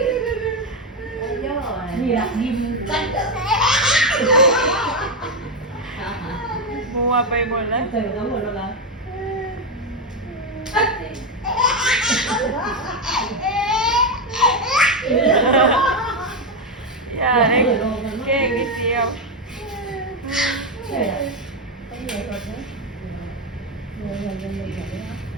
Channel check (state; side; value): normal; both; correlation 0.08